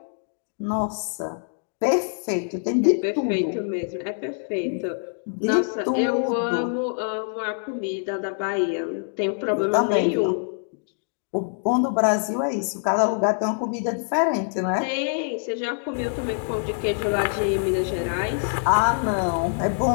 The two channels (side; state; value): right; silent; digital silence